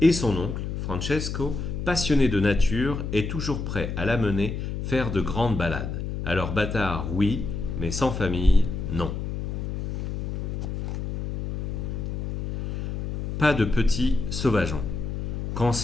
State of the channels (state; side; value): noise; left; hum, 4 dB below the sound